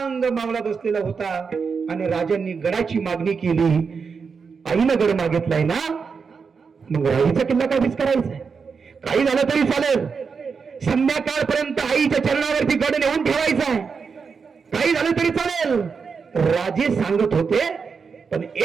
मावळा बसलेला होता आणि राजांनी गडाची मागणी केली. आईनं गड मागितलाय ना, मग राईचा किल्ला काय करायचा? काही झालं तरी चालेल, संध्याकाळपर्यंत आईच्या चरणावरती गड नेऊन ठेवायचा आहे, काही झालं तरी चालेल. राजे सांगत होते, पण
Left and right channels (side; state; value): left; quieter; 5.5 dB